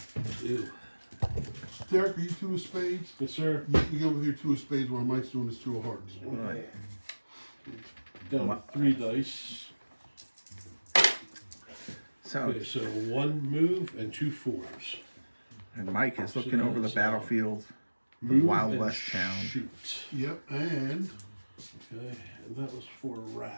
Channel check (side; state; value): both; inverted; correlation -1.00